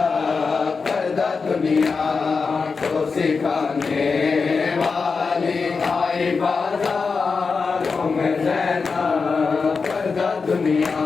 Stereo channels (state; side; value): quieter; right; 4.8 dB